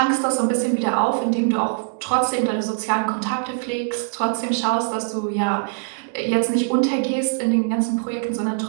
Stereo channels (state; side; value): silent; left; digital silence